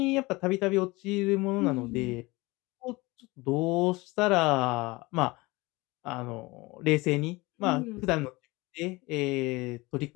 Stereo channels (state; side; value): quieter; right; 22.7 dB